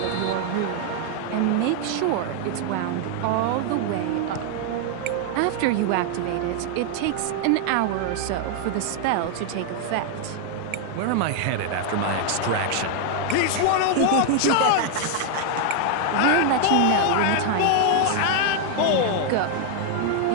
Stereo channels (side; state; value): both; different; correlation 0.00